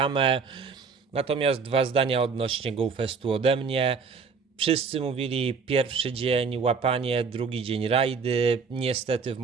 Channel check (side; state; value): left; quieter; 5.3 dB